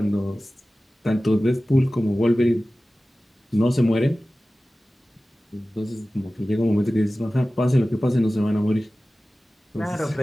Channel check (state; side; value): normal; both; correlation 0.96